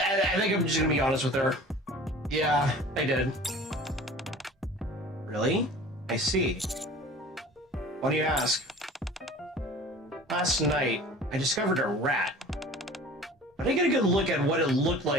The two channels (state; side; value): normal; both; correlation 0.43